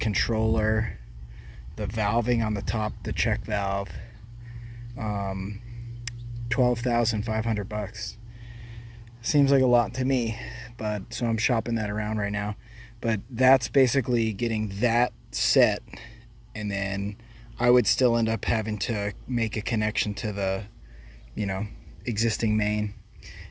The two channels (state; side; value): identical; both; correlation 1.00